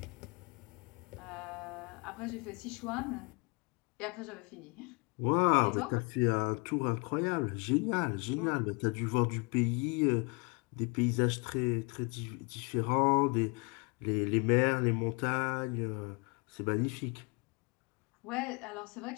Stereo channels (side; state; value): right; quieter; 31.1 dB